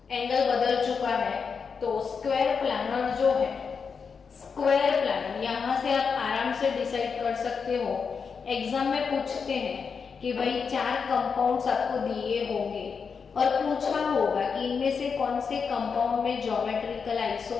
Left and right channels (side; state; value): right; quieter; 5.8 dB